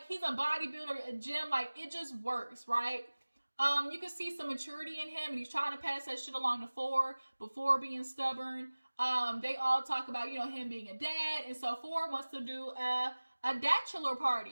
he's a bodybuilder, a gym, like, it just works, right? You can see some maturity in him, and he's trying to pass that shit along to Phor before being stubborn. They all talk about, him being a dad, and so Phor wants to do a bachelor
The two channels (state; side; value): inverted; both; correlation -1.00